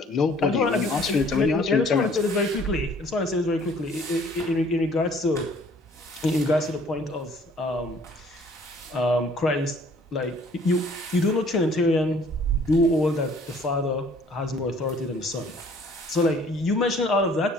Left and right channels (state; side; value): normal; both; correlation 0.56